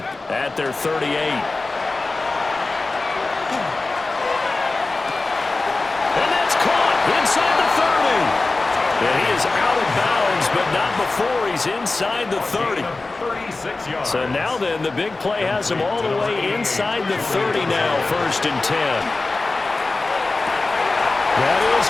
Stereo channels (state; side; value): quieter; right; 3.4 dB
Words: at their 38. And that's caught inside the 30. And he is out of bounds, but not before he's inside the 30. So now then, the big play has him all the way inside the 30 now, 1st and 10. That is